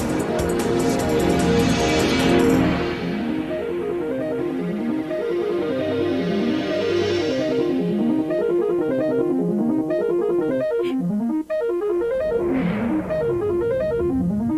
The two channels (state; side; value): identical; both; correlation 1.00